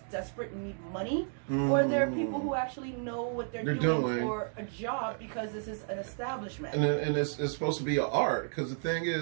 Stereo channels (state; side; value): silent; left; 56 dB below the other